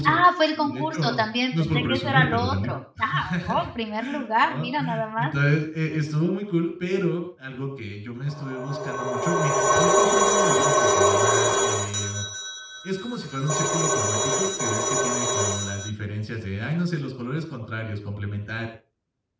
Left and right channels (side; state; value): both; identical; correlation 1.00